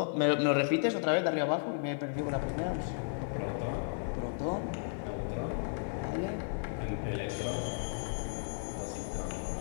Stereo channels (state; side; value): silent; right; digital silence